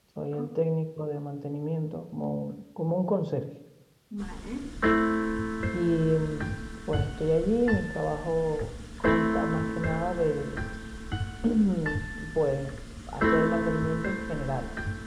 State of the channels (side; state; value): both; identical; correlation 1.00